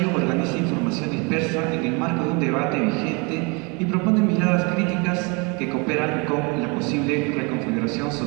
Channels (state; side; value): quieter; left; 30.6 dB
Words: organiza información dispersa en el marco de un debate vigente y propone miradas críticas que cooperan con la posible reconfiguración